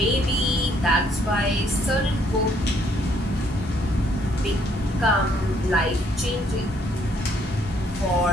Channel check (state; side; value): normal; both; correlation 0.67